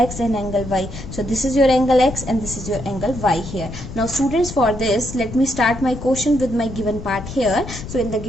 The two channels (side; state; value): left; noise; rumble, 10 dB below the sound